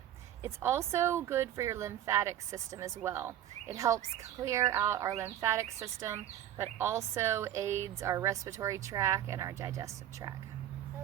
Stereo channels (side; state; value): left; quieter; 11.6 dB